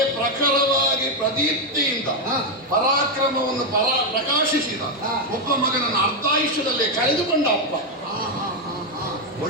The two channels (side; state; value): both; normal; correlation 0.05